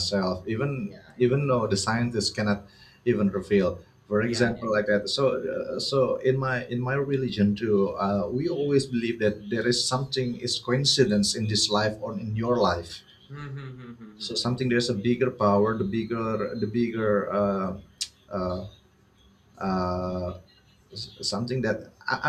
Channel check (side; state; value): both; identical; correlation 1.00